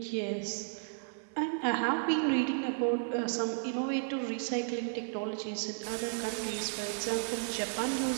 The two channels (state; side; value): silent; left; 55 dB below the other